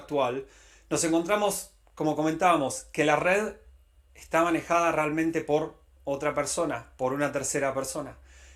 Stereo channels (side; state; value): both; identical; correlation 1.00